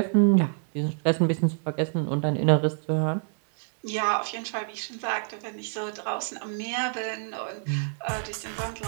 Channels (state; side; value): silent; left; digital silence